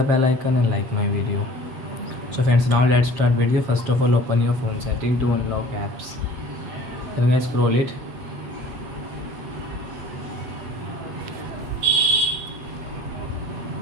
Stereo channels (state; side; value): late; left; 7.8 ms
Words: bell icon and like my video. So friends, now let's start video. First of all, open your phone setting to unlock apps. Then guys, scroll it.